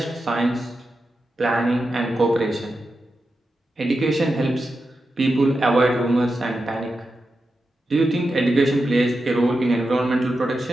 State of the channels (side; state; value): both; normal; correlation 0.89